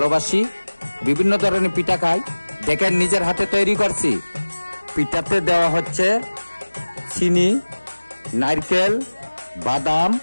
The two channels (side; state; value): both; inverted; correlation -1.00